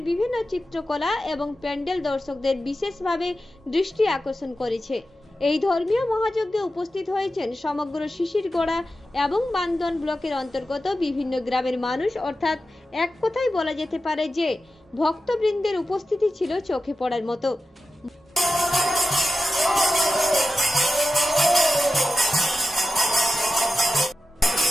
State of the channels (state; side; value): normal; both; correlation 0.92